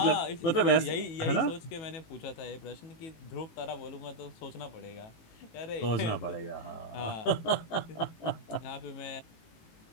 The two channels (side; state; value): right; late; 18 ms